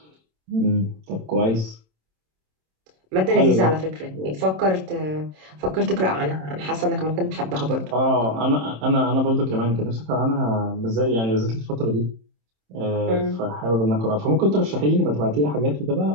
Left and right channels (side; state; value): left; late; 27 ms